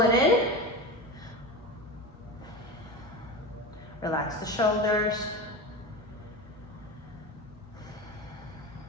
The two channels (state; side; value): normal; both; correlation 0.25